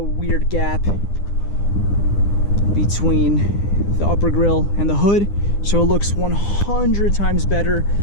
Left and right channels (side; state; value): right; late; 9.9 ms